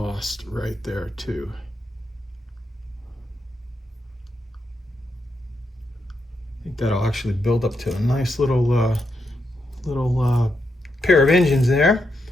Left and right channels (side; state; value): both; normal; correlation 0.82